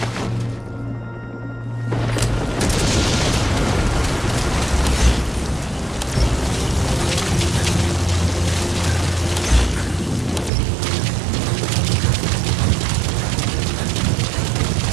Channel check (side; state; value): left; drops out; at 10.5 s